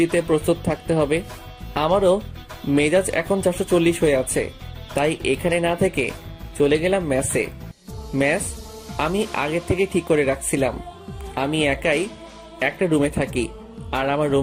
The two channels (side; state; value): both; identical; correlation 1.00